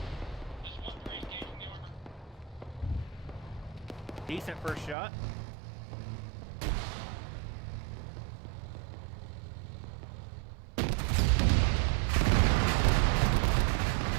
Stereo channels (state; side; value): drops out; left; at 5.0 s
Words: Decent first shot.